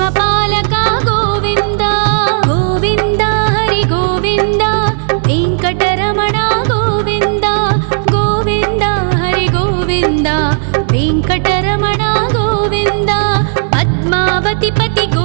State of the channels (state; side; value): silent; left; digital silence